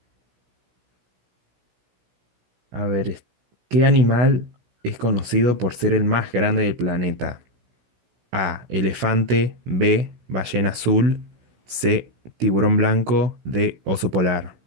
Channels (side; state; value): left; late; 16 ms